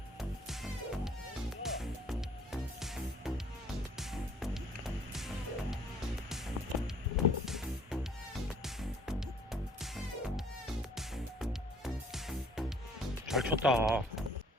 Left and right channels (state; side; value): normal; both; correlation 0.58